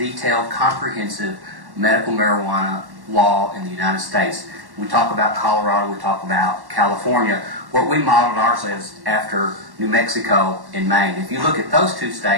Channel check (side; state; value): left; late; 1.1 ms